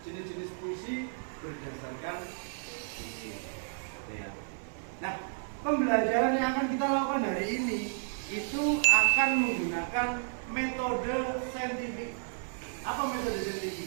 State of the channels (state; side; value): silent; left; 55 dB below the other